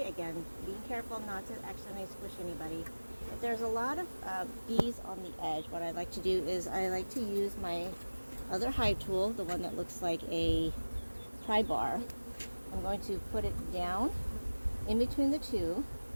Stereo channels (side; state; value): both; inverted; correlation -1.00